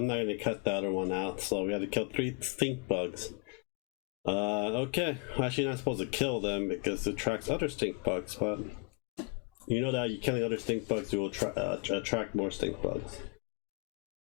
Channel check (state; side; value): quieter; right; 31.1 dB